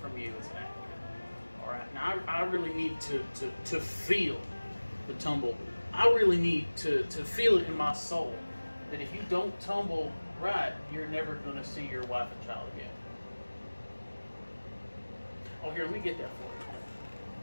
you as an actor. All right. Now, I really need to feel the tumble. I really need to feel it in my soul that if you don't tumble right, you're never going to see your wife and child again. Oh, here, let me get that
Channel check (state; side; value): inverted; both; correlation -1.00